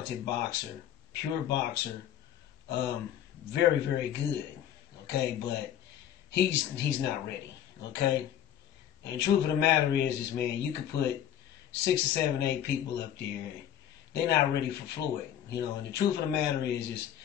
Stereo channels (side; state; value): right; quieter; 10.6 dB